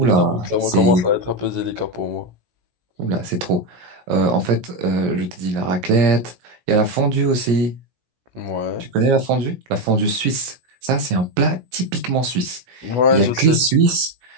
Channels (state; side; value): late; left; 17 ms